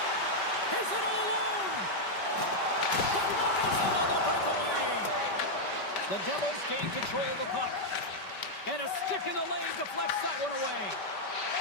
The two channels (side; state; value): right; late; 5.2 ms